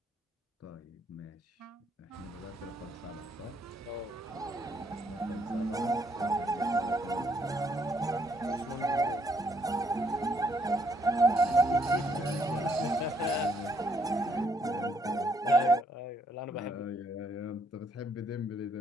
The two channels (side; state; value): both; normal; correlation 0.71